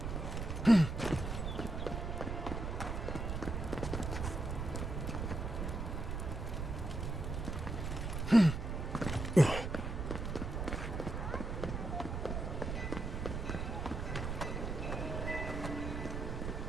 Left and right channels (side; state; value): right; noise; rumble, 3 dB below the sound